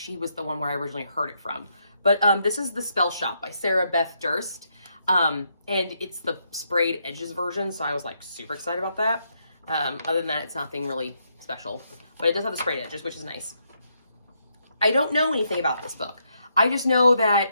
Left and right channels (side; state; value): both; inverted; correlation -0.77